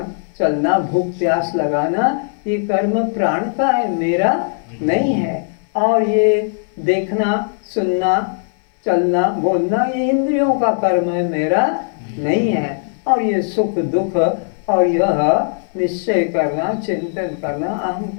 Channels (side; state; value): right; silent; digital silence